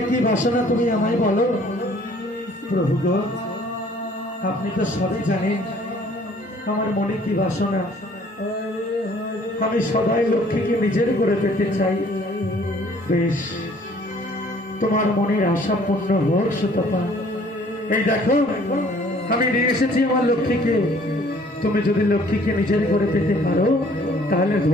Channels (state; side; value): normal; both; correlation 0.56